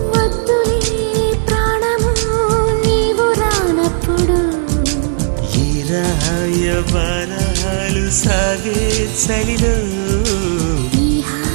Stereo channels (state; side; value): silent; left; digital silence